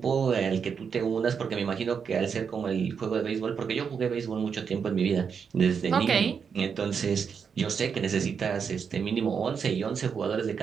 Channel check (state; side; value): quieter; left; 6.5 dB